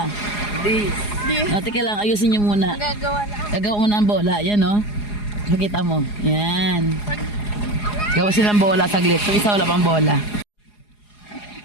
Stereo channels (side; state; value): right; late; 4.8 ms